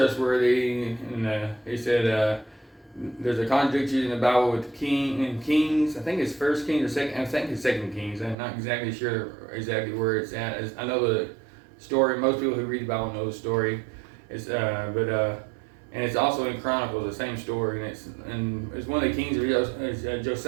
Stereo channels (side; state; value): left; drops out; at 8.3 s